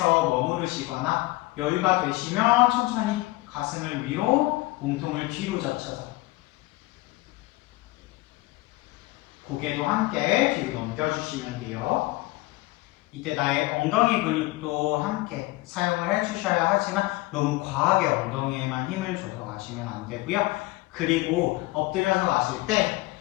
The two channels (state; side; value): quieter; right; 20.6 dB